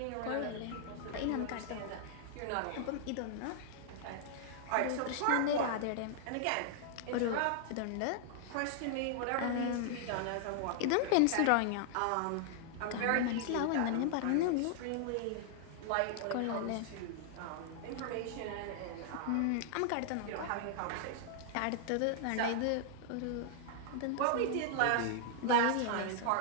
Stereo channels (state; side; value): different; both; correlation -0.01